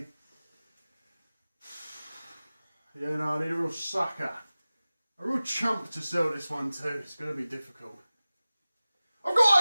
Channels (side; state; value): both; inverted; correlation -0.97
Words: Yeah, no, I need a real sucker. A real chump to sell this one to. It's going to be difficult. I've